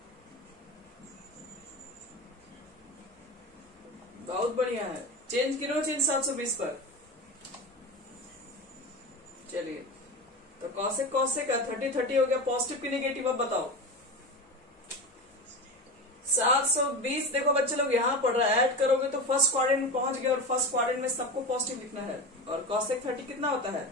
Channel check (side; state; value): both; normal; correlation 0.25